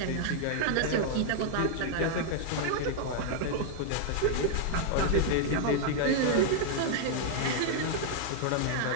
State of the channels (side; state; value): both; different; correlation -0.01